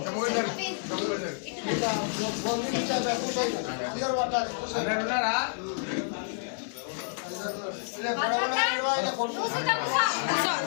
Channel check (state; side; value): silent; right; 55 dB below the other